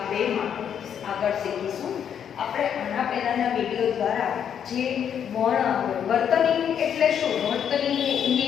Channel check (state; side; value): quieter; right; 8.5 dB